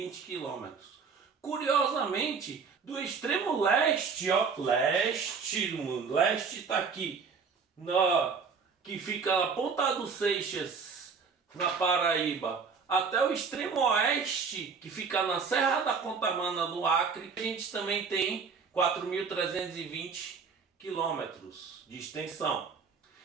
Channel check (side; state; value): left; quieter; 5.5 dB